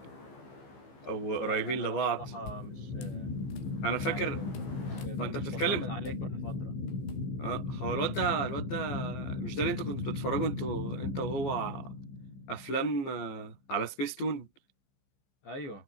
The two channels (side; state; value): right; late; 15 ms